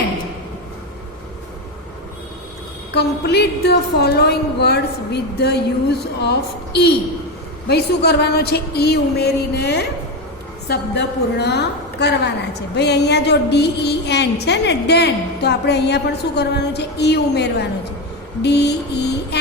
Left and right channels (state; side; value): normal; both; correlation 0.14